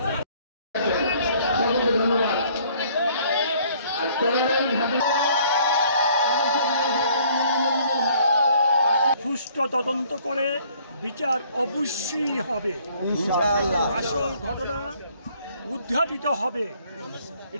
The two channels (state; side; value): inverted; both; correlation -0.60